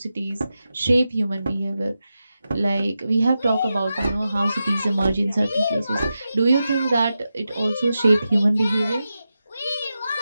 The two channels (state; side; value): inverted; both; correlation -0.91